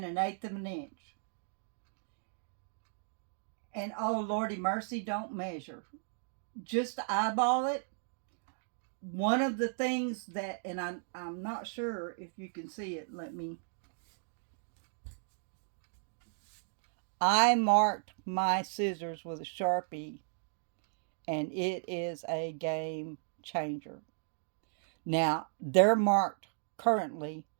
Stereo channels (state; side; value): silent; left; digital silence